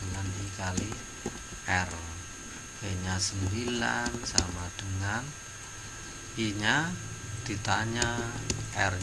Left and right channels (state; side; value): identical; both; correlation 1.00